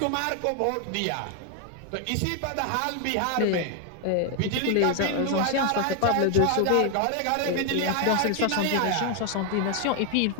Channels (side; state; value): both; different; correlation 0.00